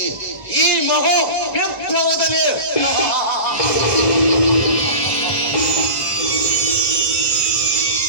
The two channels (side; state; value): right; late; 1.4 ms